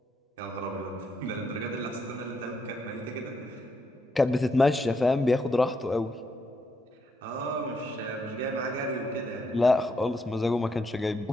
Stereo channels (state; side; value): normal; both; correlation 0.78